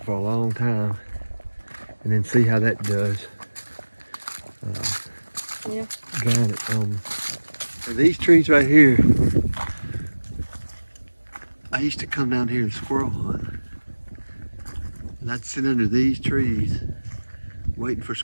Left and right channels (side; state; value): both; inverted; correlation -1.00